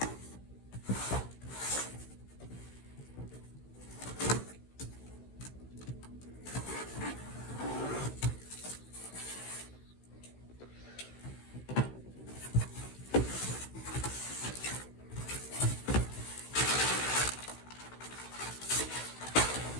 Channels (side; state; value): right; late; 16 ms